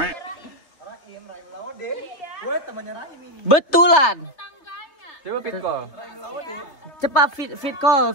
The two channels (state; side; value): late; right; 3.3 ms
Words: Betulan. Coba fit call. Cepat